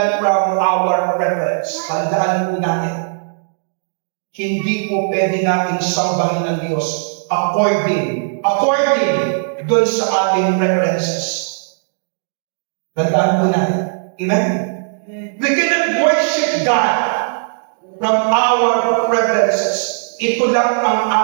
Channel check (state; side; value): silent; left; digital silence